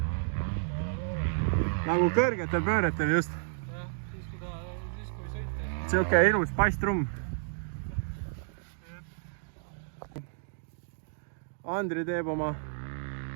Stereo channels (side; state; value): left; silent; digital silence